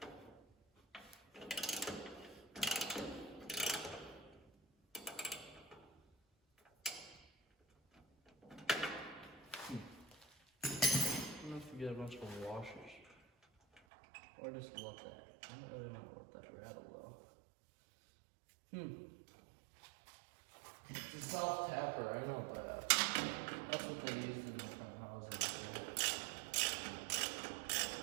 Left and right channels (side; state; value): left; drops out; at 13.8 s